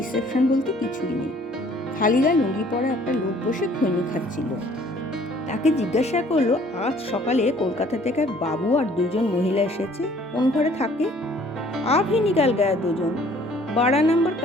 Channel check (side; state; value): both; normal; correlation 0.57